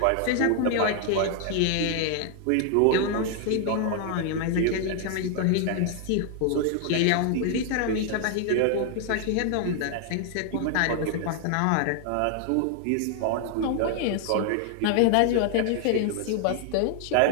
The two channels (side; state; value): both; different; correlation 0.00